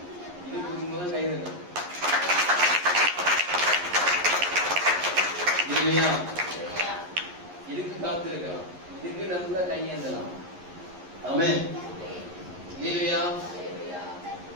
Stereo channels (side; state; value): left; late; 11 ms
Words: கை வைக்கணும். இதுக்கு காத்து இருக்கலாம், இதுக்கு நல்ல கையேந்தலாம். ஆமென். ஹல்லேலூயா.